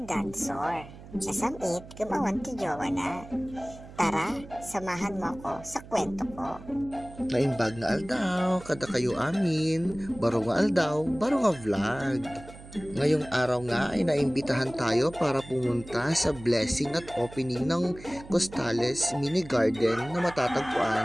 Dansor. Nasamit, gumawan ti jowa na. Tara, samahan mo ako sa kwento ko. Naimbag nga aldaw, kada kayo amin. Baro nga aldaw, baro nga vlog. Ngayong araw nga ay naimbitahan tayo para pumunta sa blessing at opening ng Costales Mini Garden na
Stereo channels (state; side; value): noise; right; hum, 17 dB below the sound